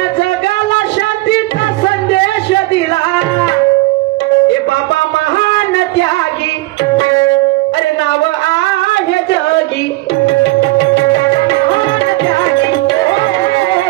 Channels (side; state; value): left; quieter; 20.0 dB